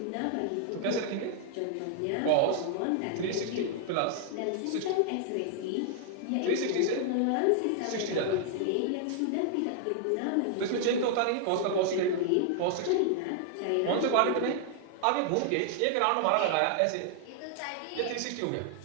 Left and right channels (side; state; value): both; different; correlation 0.00